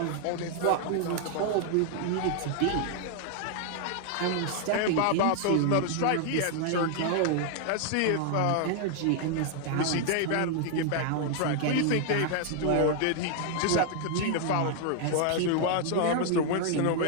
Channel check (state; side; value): different; both; correlation 0.00